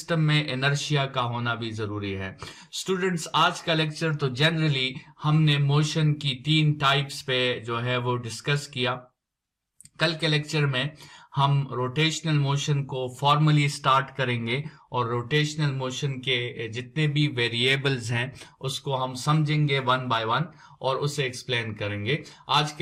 में इनर्शिया का होना भी जरूरी है। स्टूडेंट्स, आज का लेक्चर तो जनरली हमने मोशन की 3 टाइप्स पे जो है वो डिस्कस किया। कल के लेक्चर में हम रोटेशनल मोशन को फॉर्मली स्टार्ट करेंगे और रोटेशनल मोशन के जितने भी वेरिएबल्स हैं उसको हम समझेंगे 1 बाय 1 और उसे एक्सप्लेन करेंगे। आज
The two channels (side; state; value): both; identical; correlation 1.00